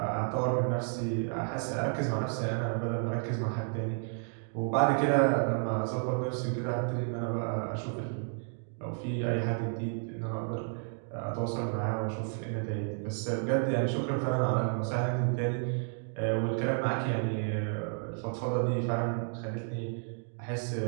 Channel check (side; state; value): left; silent; 57 dB below the other